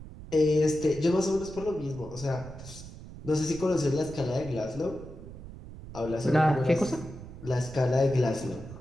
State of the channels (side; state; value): right; noise; rumble, 14 dB below the sound